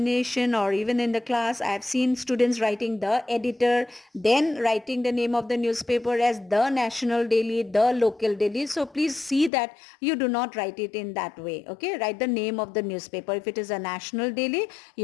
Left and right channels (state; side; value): drops out; right; at 9.5 s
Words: or even in the class, I have seen students writing the editor, then writing the name of the newspaper as the national daily, the local daily. So please see that you do not write it in that way. Okay, write the name of the newspaper. If it is a national daily,